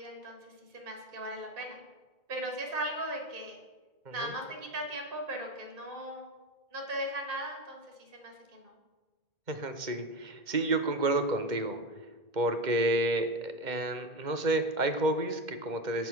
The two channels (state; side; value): late; left; 2.1 ms